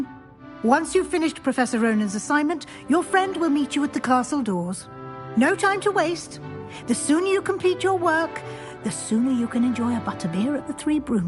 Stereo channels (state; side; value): identical; both; correlation 1.00